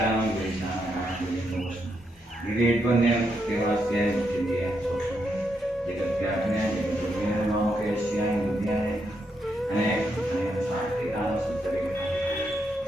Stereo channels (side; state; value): both; normal; correlation 0.80